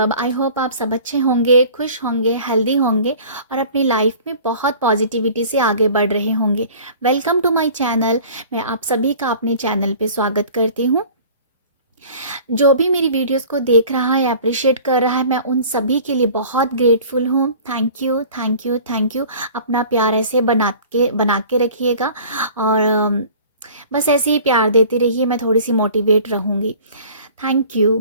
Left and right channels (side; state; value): both; inverted; correlation -0.46